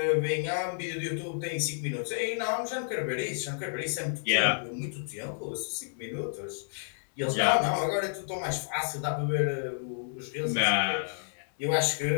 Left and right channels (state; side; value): silent; right; 58 dB below the other